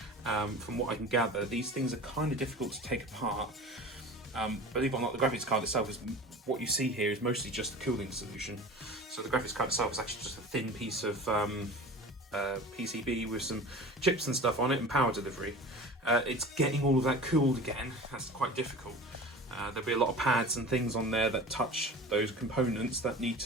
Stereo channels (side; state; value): both; normal; correlation 0.37